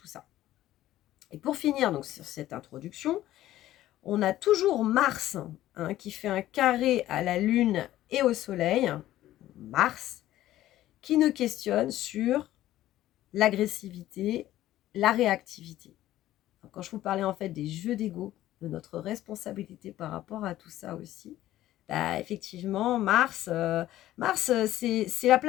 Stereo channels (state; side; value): quieter; right; 14.2 dB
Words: ça. Et pour finir donc sur cette introduction, on a toujours Mars, hein, qui fait un carré à la Lune et au Soleil, Mars, qui nous questionne sur l'agressivité, la réactivité. quand je vous parlais en fait des jeux d'ego, de notre responsabilité par rapport à tout ça aussi, bah, effectivement, Mars c'est la